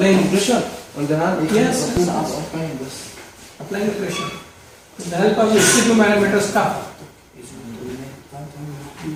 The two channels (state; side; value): identical; both; correlation 1.00